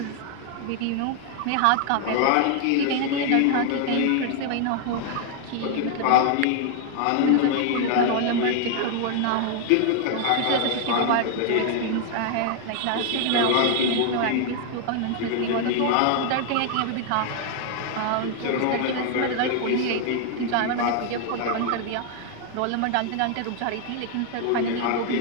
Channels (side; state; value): both; different; correlation 0.00